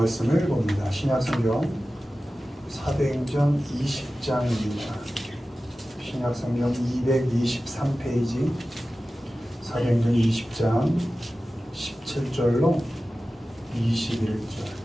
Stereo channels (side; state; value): both; normal; correlation 0.95